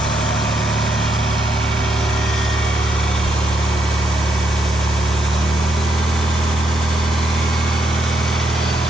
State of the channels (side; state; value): both; normal; correlation 0.77